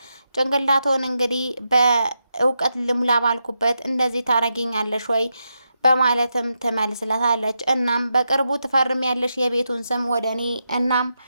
ጭንቅላቶን እንግዲህ በእውቀት ልሙላ ባልኩበት እንደዚህ ታረጊኛለሽ ወይ በማለትም ትመልስለታለች። እናም በቅርቡ ትፈርሚያለሽ የቤቱን ስም ወደ እኔ፣ እናም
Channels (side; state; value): both; inverted; correlation -0.86